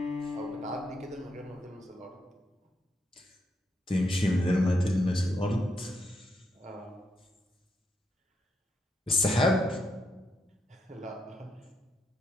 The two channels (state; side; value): normal; both; correlation 0.80